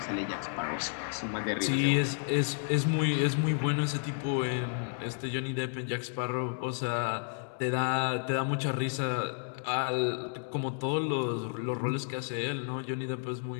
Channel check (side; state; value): right; silent; 57 dB below the other